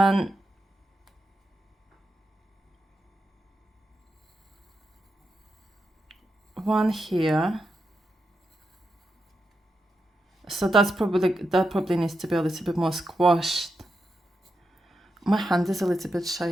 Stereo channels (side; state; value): both; normal; correlation 0.87